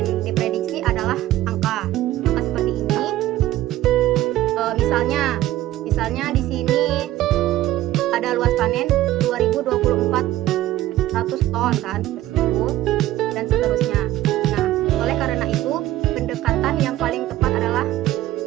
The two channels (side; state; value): left; quieter; 14.7 dB